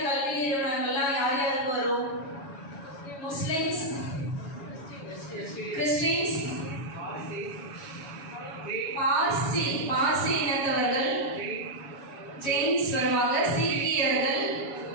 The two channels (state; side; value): late; right; 7.1 ms